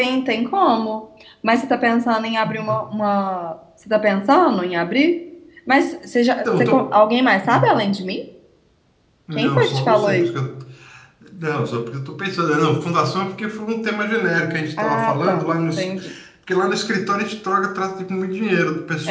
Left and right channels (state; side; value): identical; both; correlation 1.00